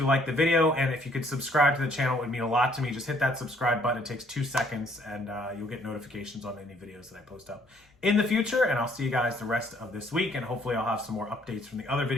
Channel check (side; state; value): both; normal; correlation 0.64